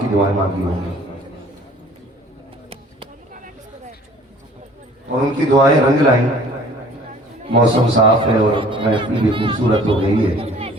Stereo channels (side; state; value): both; normal; correlation 0.51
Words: دعائیں مانگی ہوں گی، اور ان کی دعائیں رنگ لائیں۔ موسم صاف ہے اور محفل بھی خوبصورت ہو گئی ہے۔